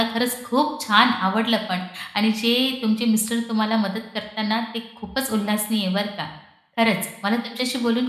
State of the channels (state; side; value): identical; both; correlation 1.00